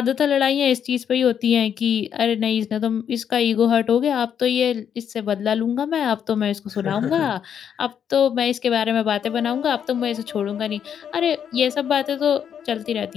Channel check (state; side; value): quieter; right; 8.4 dB